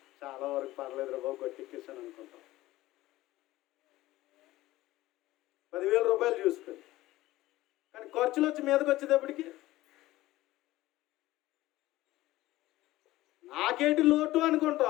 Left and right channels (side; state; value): right; quieter; 17.0 dB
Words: చాలా వరకు పర్లేదు బాబు, గట్టెక్కేసాను అనుకుంటాం. 10,000 రూపాయలు చూసుకొని, కానీ ఖర్చులు వచ్చి మీదకి వచ్చేటప్పటికి నాకేంటి లోటు